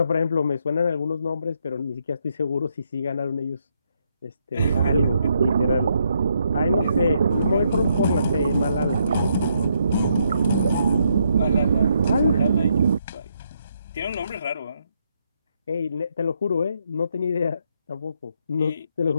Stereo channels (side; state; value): both; inverted; correlation -0.76